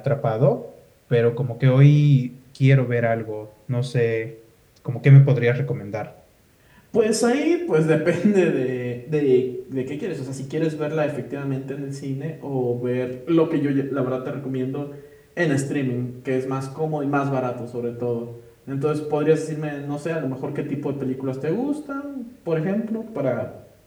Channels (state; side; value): identical; both; correlation 1.00